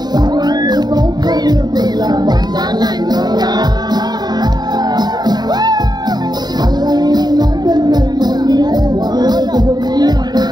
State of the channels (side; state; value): left; late; 0.20 ms